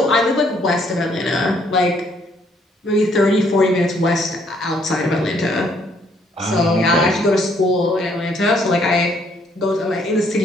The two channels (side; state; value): both; normal; correlation 0.67